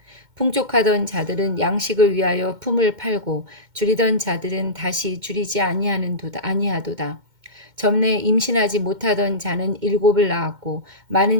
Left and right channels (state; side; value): late; left; 2.1 ms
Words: 풍족하던 자들은 양식을 위하여 품을 팔고 줄이던 자들은 다시 줄이지 아니하도다. 전에 임신하지 못하던 자는 7을 낳았고